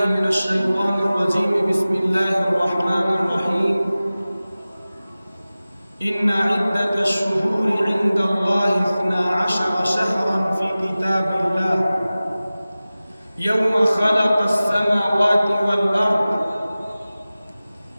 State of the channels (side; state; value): both; inverted; correlation -0.97